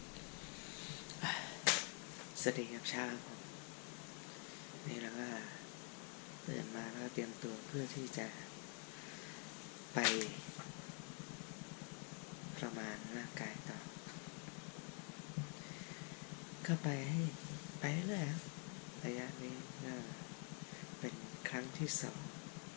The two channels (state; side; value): quieter; right; 39.1 dB